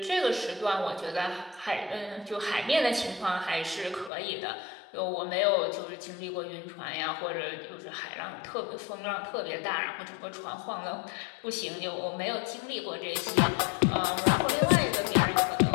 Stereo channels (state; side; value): drops out; right; at 4.1 s